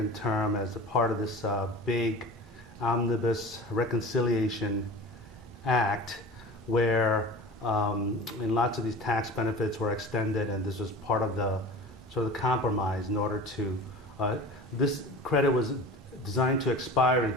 term as a part of this big Omnibus Reconciliation Act, where and lots of these tax benefits were extended, and this was part of the sort of the compromise in order to, this credit was designed to expire in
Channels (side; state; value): both; normal; correlation 0.37